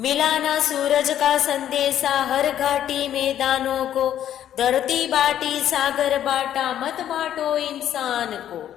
ना सूरज का संदेशा हर घाटी मैदानों को, धरती बांटी सागर बांटा, मत बांटो इंसान को।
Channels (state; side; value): quieter; right; 10.9 dB